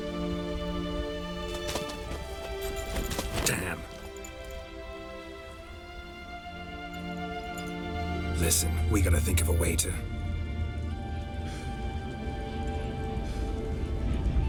Damn. Listen, we gotta think of a way to...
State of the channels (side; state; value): both; identical; correlation 1.00